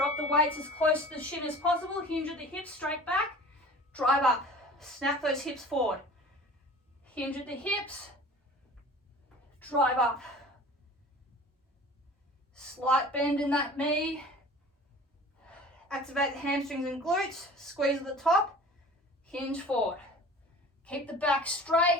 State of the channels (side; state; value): both; normal; correlation 0.43